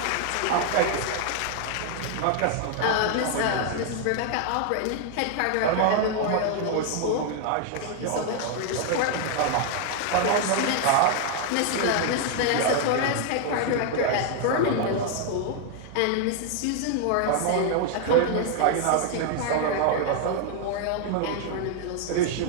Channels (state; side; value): different; both; correlation 0.00